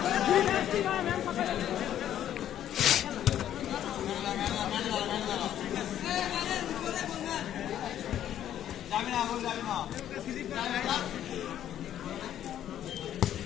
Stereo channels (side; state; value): right; quieter; 11.1 dB